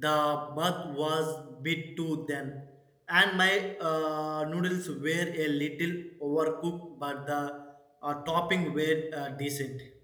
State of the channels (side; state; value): both; identical; correlation 1.00